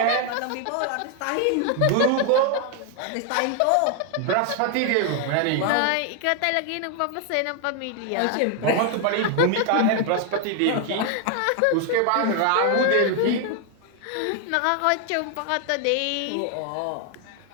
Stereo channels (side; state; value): both; different; correlation 0.00